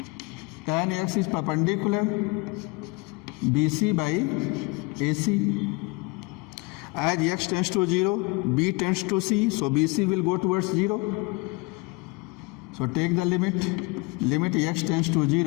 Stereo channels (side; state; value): right; quieter; 26.4 dB